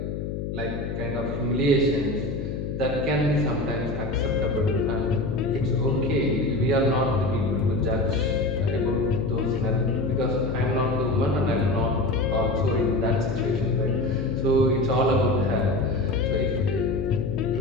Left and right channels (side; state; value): left; noise; hum, 4 dB below the sound